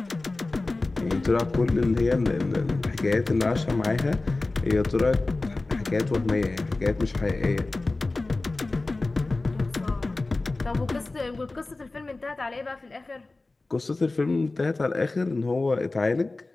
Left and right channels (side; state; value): right; quieter; 3.2 dB